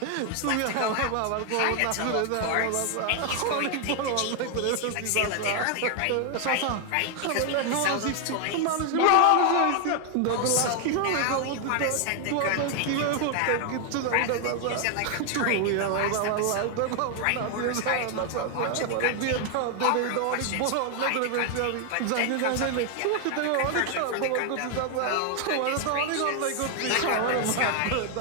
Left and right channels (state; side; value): different; both; correlation 0.00